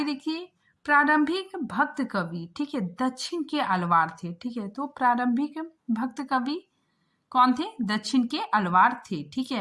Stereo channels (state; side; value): identical; both; correlation 1.00